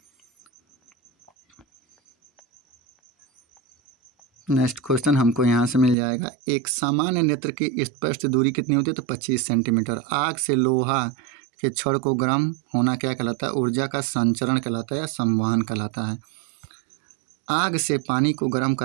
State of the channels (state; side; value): drops out; left; at 6.0 s